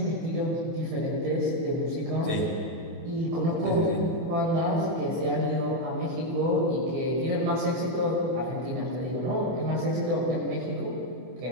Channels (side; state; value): left; late; 24 ms